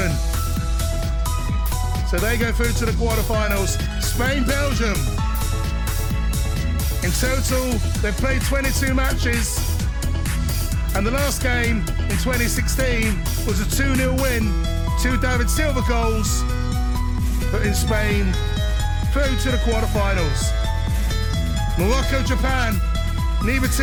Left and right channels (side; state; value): both; identical; correlation 1.00